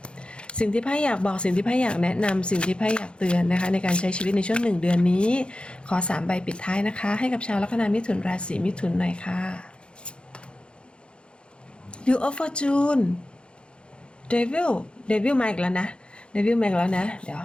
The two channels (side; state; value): right; late; 0.055 ms